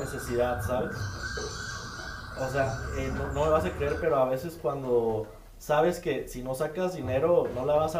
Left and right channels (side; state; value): both; identical; correlation 1.00